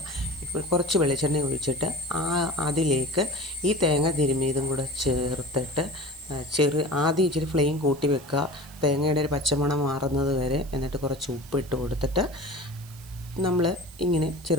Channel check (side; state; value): right; noise; hiss, 21 dB below the sound